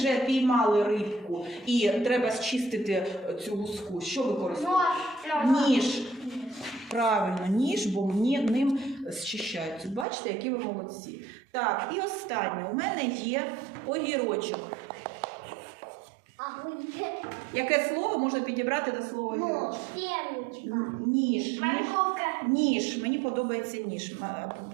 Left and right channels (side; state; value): left; drops out; at 10.1 s